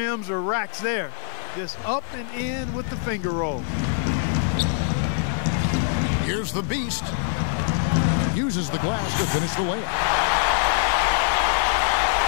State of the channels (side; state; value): right; silent; 63 dB below the other